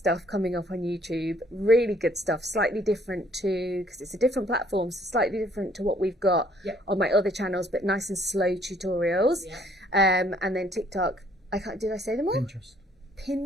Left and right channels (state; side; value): normal; both; correlation 0.63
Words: coming up on YouTube. Really good stuff. Slightly different because it's a different platform, so slightly different to what we've got Yeah. on my other channels, but nice and slow tutorials. Yeah. And then TikTok. Did I say them all? Pinterest.